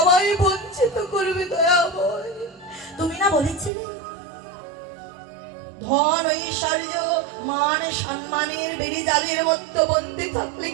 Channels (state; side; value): drops out; left; at 3.7 s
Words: বঞ্চিত করবে দয়াময়? তুমি না বলেছিলে ধন ঐশ্বর্য মান সম্মানের বেড়ি জালের মতো বন্দী থাকলে